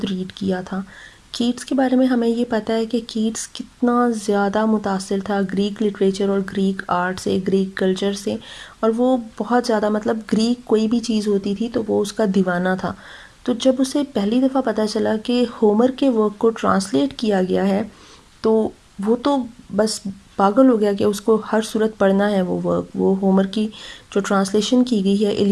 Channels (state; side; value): identical; both; correlation 1.00